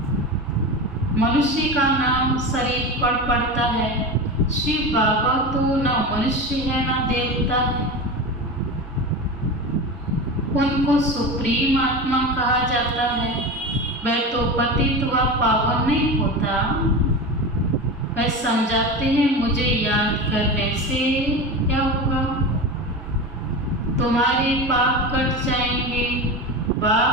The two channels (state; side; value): normal; both; correlation 0.26